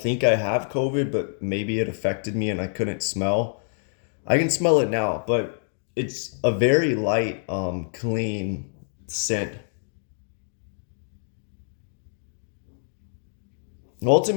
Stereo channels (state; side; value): silent; right; digital silence